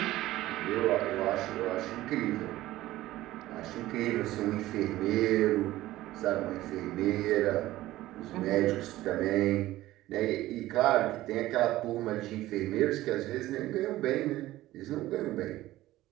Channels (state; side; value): quieter; left; 16.0 dB